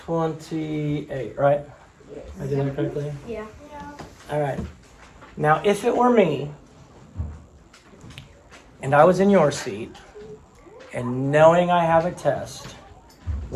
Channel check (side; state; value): both; identical; correlation 1.00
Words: 28, right? I did that correctly? Yeah. All right. Now, if it were me, and I was in your seat, and knowing I have a test,